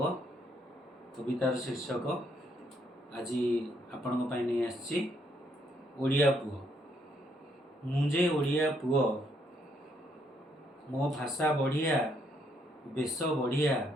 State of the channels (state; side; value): normal; both; correlation 0.72